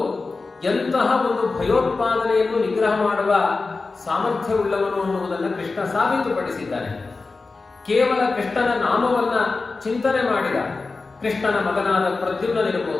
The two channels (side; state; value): right; quieter; 3.9 dB